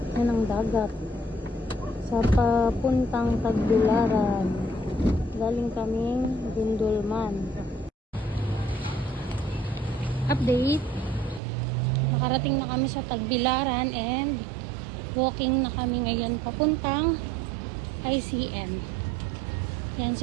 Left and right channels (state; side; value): drops out; left; at 11.4 s